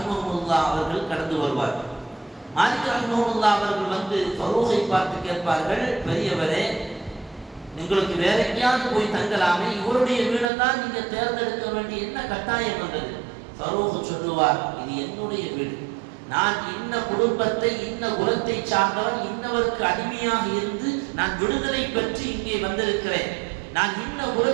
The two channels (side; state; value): left; drops out; at 10.5 s